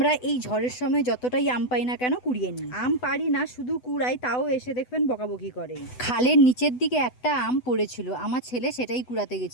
এই ঝড়ের সময় যতটাই আম পাই না কেন কুড়িয়ে নিই। আম পারি না, শুধু কুড়াই, তাও এসে দেখবেন বকাবকি করে। খালের নিচের দিকে একটা আম পড়েছিল, আমার ছেলে সেটাই কুড়াতে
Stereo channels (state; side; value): late; right; 8.0 ms